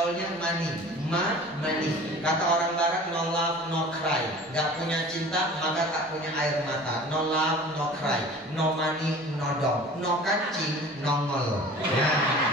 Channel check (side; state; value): both; normal; correlation 0.43